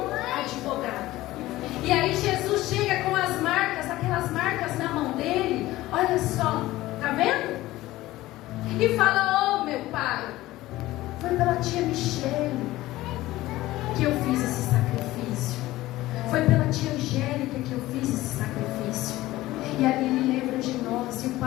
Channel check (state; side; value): quieter; right; 17.0 dB